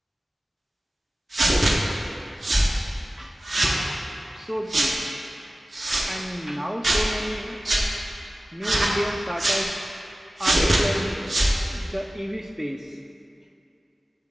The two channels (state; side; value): normal; both; correlation 0.96